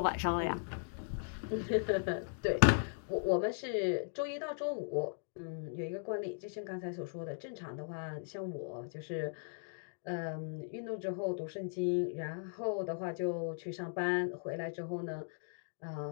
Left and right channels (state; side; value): silent; right; digital silence